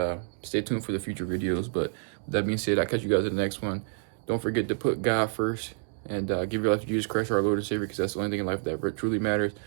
stay tuned for the future videos. But with that being said, I'll catch you guys in the next one. Don't forget to put God first, and give your life to Jesus Christ, our Lord and Savior, because that's the only thing in life that truly matters.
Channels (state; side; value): silent; left; digital silence